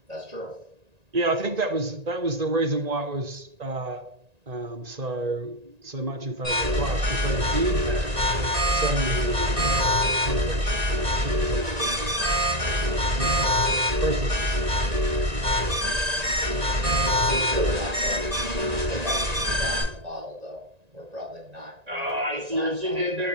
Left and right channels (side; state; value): left; late; 1.9 ms